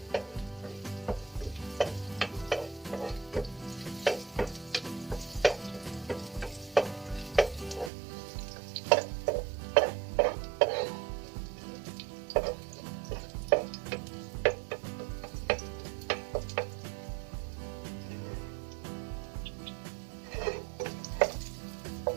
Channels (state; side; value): drops out; left; at 7.9 s